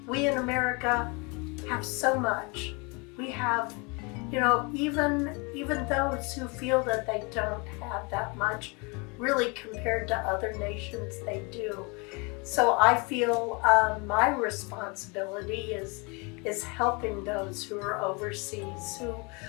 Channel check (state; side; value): quieter; right; 30.2 dB